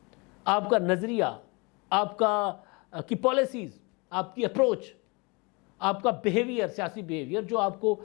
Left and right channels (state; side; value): quieter; right; 28.7 dB